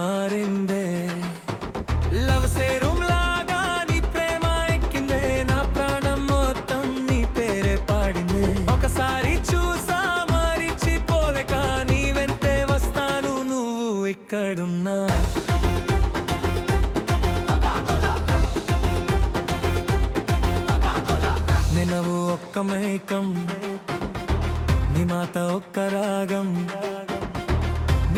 లవ్ సేరుం లాగా నీ ప్రేమ ఎక్కిందే, నా ప్రాణం మొత్తం నీ పేరే పాడిందే. ఒకసారి చూసా మరిచిపోలేక నీ వెంటే వస్తాను, నువ్వు ఎక్కడున్నా. నినవు ఒక్క మైకం, నీ మాట ఒక్క రాగం,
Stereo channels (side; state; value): both; identical; correlation 1.00